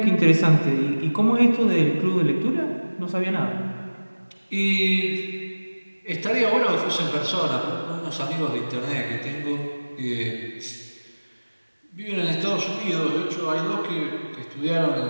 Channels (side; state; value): both; inverted; correlation -1.00